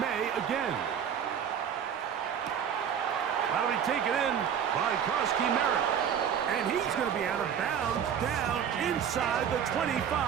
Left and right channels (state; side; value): quieter; left; 8.3 dB